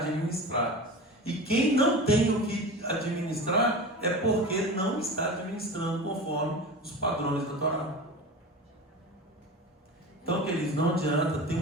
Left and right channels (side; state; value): both; normal; correlation 0.31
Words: E quem não tem o que administrar é porque não está administrando conforme os padrões da Torá. Então, queridos, não adianta, tem